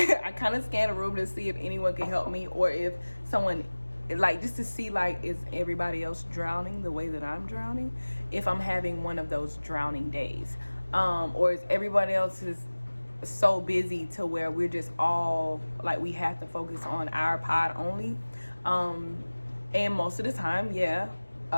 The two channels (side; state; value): both; inverted; correlation -1.00